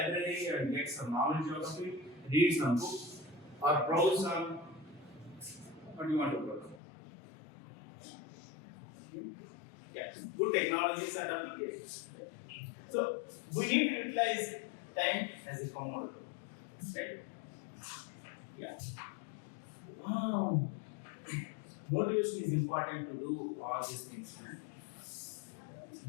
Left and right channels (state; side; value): drops out; right; at 6.8 s